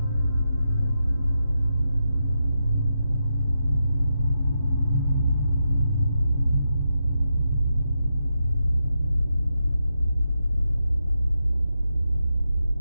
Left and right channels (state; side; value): inverted; both; correlation -0.86